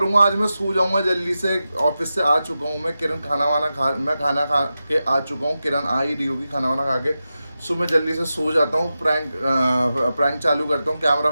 आज मैं सो जाऊँगा जल्दी से, ऑफिस से आ चुका हूँ मैं। किरण मैं खाना खा के आ चुका हूँ, किरण आ ही रही होगी खाना वाना खा के। सो मैं जल्दी से सो जाता हूँ, प्रैंक चालू करता हूँ, कैमरा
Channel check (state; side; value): inverted; both; correlation -0.92